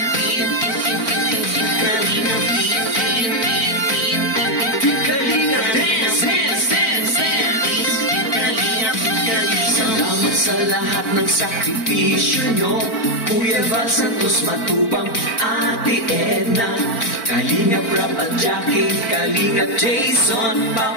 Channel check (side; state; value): right; late; 4.4 ms